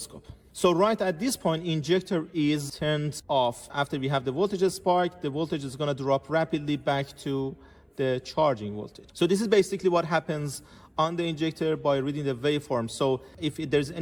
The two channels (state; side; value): identical; both; correlation 1.00